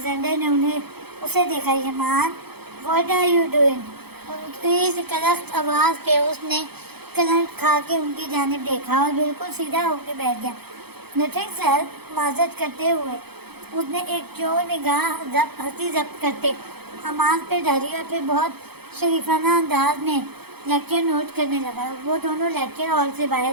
نے اسے دیکھا. یمان واٹ آر یو ڈوئنگ؟ ان کی کلخت آواز پہ اس نے کرنٹ کھا کے ان کی جانب دیکھا اور بالکل سیدھا ہو کے بیٹھ گیا. نتھنگ سر، معذرت کرتے ہوئے اس نے ایک چور نگاہ ہنسی ضبط کرتے حماس پہ ڈالی اور پھر بہت شریفانہ انداز میں لیکچر نوٹ کرنے لگا. وہ دونوں لیکچر ہال سے باہر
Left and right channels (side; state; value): left; late; 0.97 ms